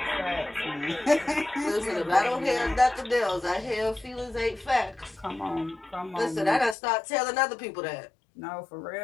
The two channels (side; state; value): right; drops out; at 6.8 s